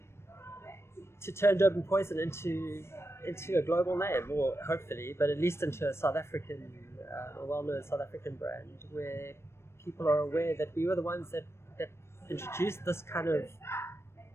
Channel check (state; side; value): late; right; 0.13 ms